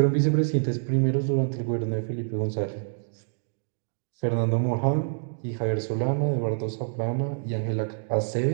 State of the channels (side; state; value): left; silent; digital silence